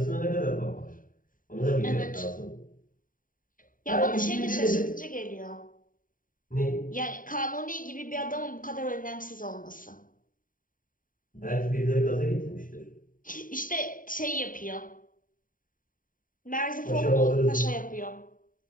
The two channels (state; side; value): late; right; 0.39 ms